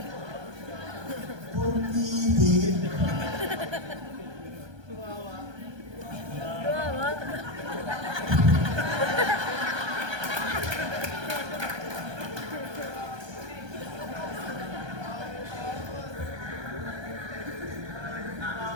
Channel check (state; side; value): late; left; 1.3 ms